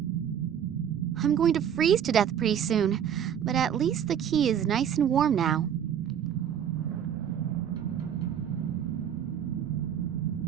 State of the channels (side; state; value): left; quieter; 9.1 dB